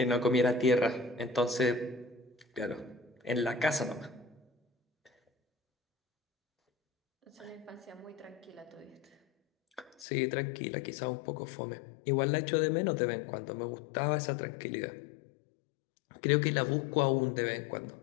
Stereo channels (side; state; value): right; drops out; at 10.1 s